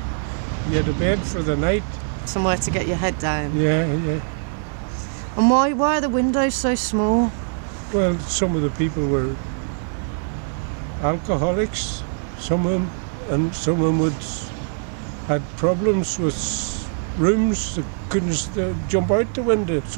You had a bed for the night. Somewhere to get your head down? Yeah. And why are the windows so small? Well, some of the people were alcoholics, some of them, and some of them had problems with rooms. They couldn't jump out the window,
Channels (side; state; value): left; silent; digital silence